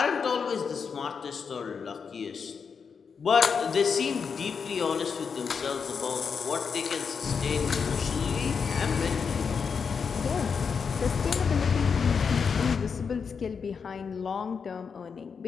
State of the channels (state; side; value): quieter; right; 6.0 dB